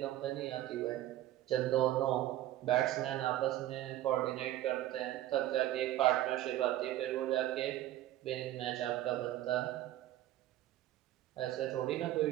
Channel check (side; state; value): left; quieter; 14.0 dB